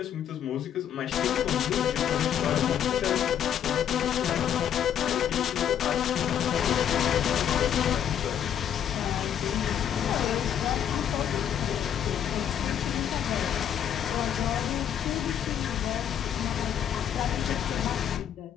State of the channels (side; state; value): right; quieter; 9.4 dB